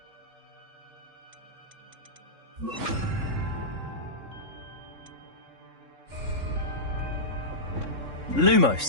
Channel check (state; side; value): late; left; 3.6 ms